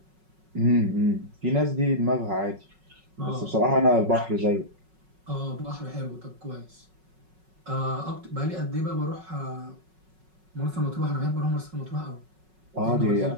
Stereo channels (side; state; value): left; late; 5.4 ms